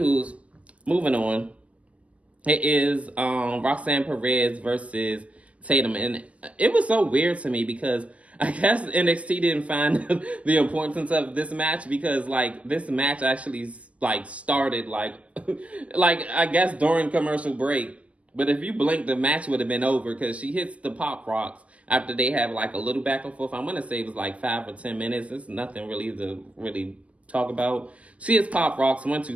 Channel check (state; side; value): late; left; 0.064 ms